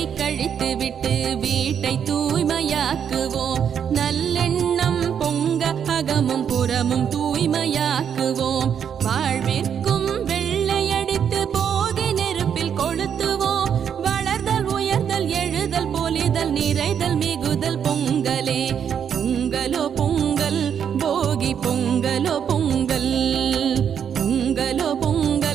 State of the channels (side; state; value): left; quieter; 8.1 dB